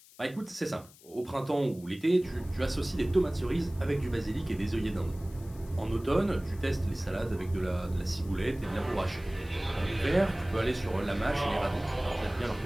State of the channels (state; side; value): noise; left; hiss, 23 dB below the sound